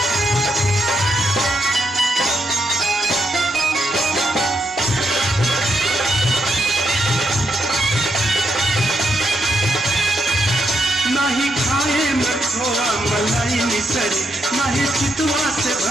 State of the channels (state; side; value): normal; both; correlation 0.80